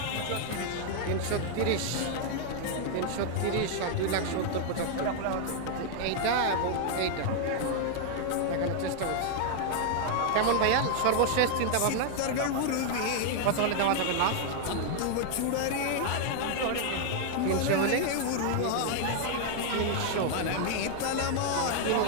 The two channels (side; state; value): both; different; correlation 0.00